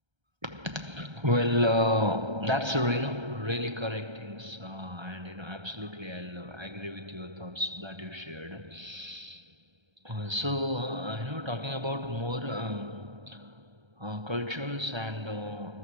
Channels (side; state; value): left; late; 1.3 ms